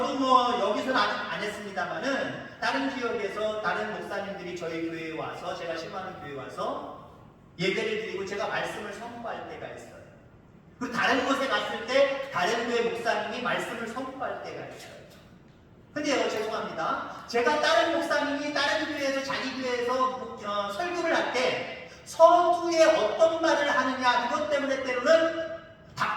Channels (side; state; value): both; identical; correlation 1.00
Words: 뭐 여기서는 아직 안 했습니다만은 다른 지역에서 다른 목사님들이 저희 교회에 와서 제가 신방하는 교회에 와서 예배를 드리고 제가 말씀을 선포할 때가 있어요. 그리고 다른 곳에 갔을 때 다른 교회 목사님이 말씀을 선포할 때가 있어요. 근데요 죄송합니다. 제가 다른 목사님이 다른 교회에서 자기 교회에서 설교를 할 때 서두에 어떤 말을 하느냐 그것 때문에 때로는